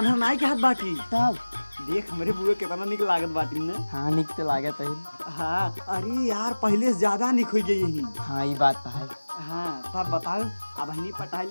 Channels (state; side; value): inverted; both; correlation -1.00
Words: नाई के हाथ बाटी तब देख हमारे बुआ कितना निक लागत बाटी ने। हाँ निक तो लागत है। हाँ अरे यार पहले से ज्यादा निक हो गई यही। हाँ ये बात तो है। हाँ तब बताओ अब हनी पटाई